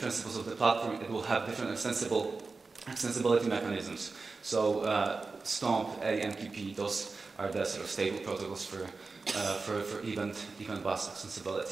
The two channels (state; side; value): quieter; left; 4.1 dB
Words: of the platform, it will have different extensibility mechanisms. So Stomp, AMQP, those are the sort of stable protocols for event bus